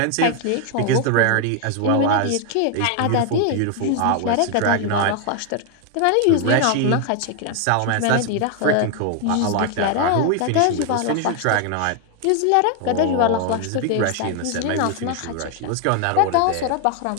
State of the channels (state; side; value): different; both; correlation 0.01